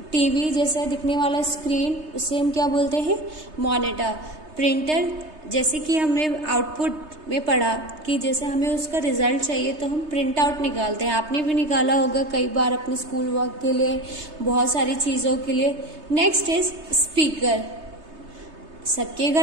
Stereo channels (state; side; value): late; left; 3.3 ms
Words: टीवी जैसा दिखने वाला स्क्रीन, उसे हम क्या बोलते हैं? मॉनिटर। प्रिंटर जैसे कि हमने आउटपुट में पढ़ा कि जैसे हमें उसका रिजल्ट चाहिए तो हम प्रिंट आउट निकालते हैं। आपने भी निकाला होगा कई बार अपने स्कूल वर्क के लिए, बहुत सारी चीज़ों के लिए। Next is speaker. सबके